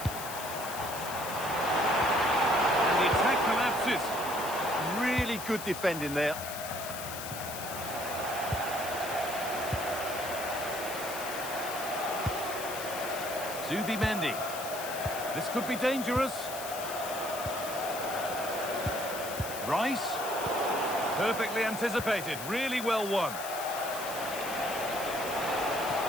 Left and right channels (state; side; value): noise; left; hiss, 9 dB below the sound